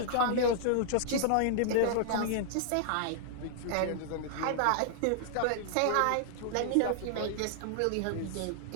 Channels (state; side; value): different; both; correlation -0.01